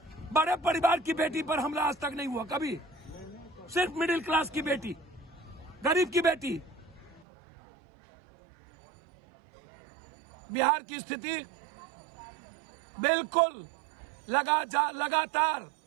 बड़े परिवार की बेटी पर हमला आज तक नहीं हुआ कभी, सिर्फ मिडिल क्लास की बेटी, गरीब की बेटी। बिहार की स्थिति बिल्कुल लगातार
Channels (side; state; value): left; drops out; at 7.2 s